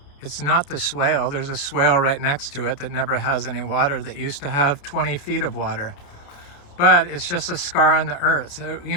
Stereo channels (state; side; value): late; right; 28 ms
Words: It's not the swale. There's a swale right next to it that never has any water, that used to have 20 feet of water. But it's just a scar on the earth.